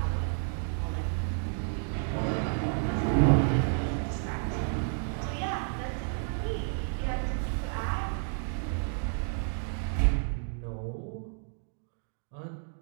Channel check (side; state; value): left; silent; 56 dB below the other